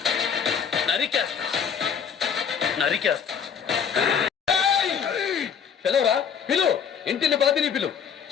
నరికేస్తా. పిలవరా, పిలు. ఇంటిని బాధిని పిలు,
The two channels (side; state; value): right; quieter; 7.3 dB